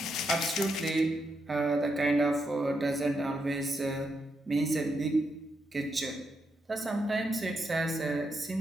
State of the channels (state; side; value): normal; both; correlation 0.82